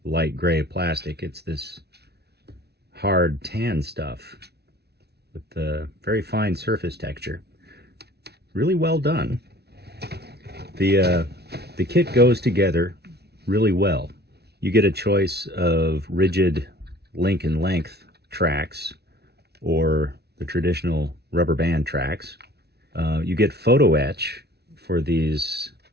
light gray plastic. It's this hard tan stuff with the very fine surface texture. Really well done. The kit goes together really well. You get a choice of rigid link and length tracks or the traditional rubber band tracks. You get photo etch for these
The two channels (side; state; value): left; late; 0.48 ms